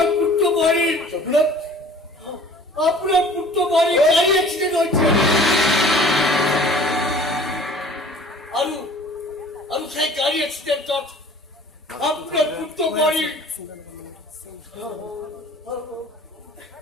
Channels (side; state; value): both; normal; correlation 0.48